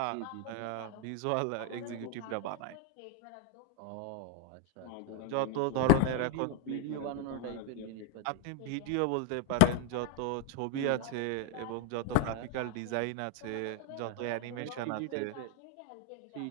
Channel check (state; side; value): different; both; correlation 0.01